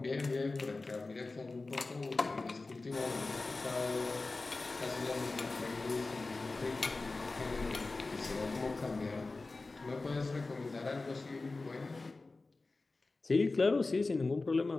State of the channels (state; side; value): quieter; right; 3.5 dB